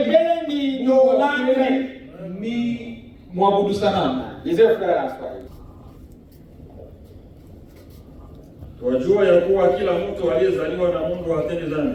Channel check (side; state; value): both; identical; correlation 1.00